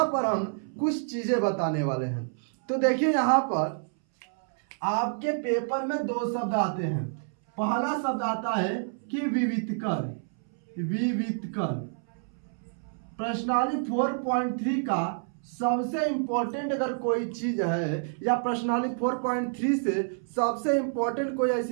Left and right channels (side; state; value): left; silent; 59 dB below the other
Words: पर हम कुछ चीजें बताने वाले हैं। तो देखिए, यहाँ पर आपके पेपर में 2 शब्द आते हैं। पहला शब्द आता है कि विवितकर। प्रश्नावली 4.3 का सबसे इंपॉर्टेंट अगर कोई चीज है, या प्रश्नावली 4.3 से सबसे इंपॉर्टेंट कोई